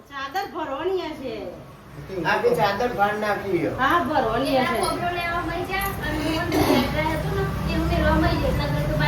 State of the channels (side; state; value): both; identical; correlation 1.00